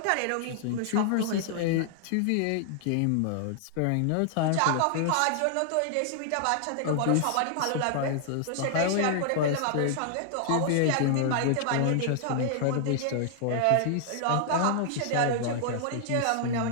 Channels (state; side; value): different; both; correlation -0.01